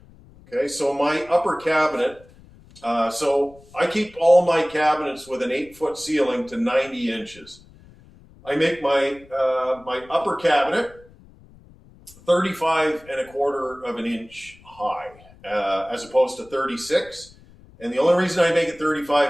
Okay, so my upper cabinet, so I keep all my cabinets with an 8-foot ceiling to 90 inches. I make my my upper cabinet 35¼ of an inch high, as opposed to 36. And the only reason I make it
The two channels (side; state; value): left; noise; rumble, 25 dB below the sound